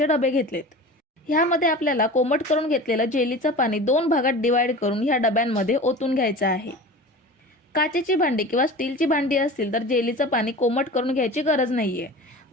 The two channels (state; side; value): normal; both; correlation 0.35